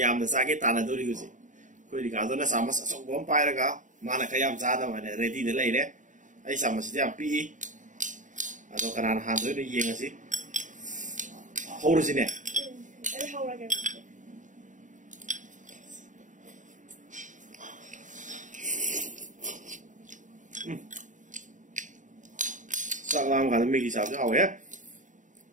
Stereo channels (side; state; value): left; late; 0.37 ms